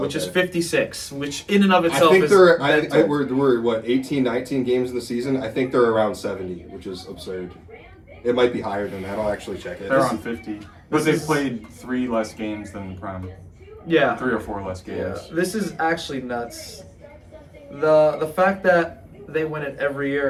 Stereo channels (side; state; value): both; identical; correlation 1.00